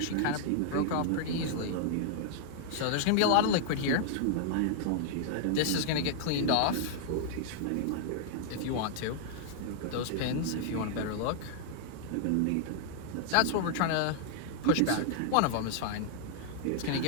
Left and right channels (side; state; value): both; different; correlation -0.01